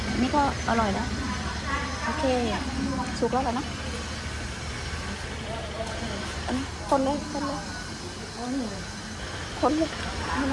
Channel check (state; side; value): identical; both; correlation 1.00